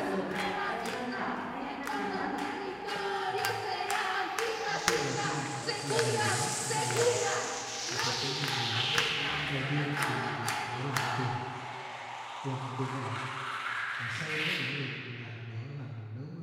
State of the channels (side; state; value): both; identical; correlation 1.00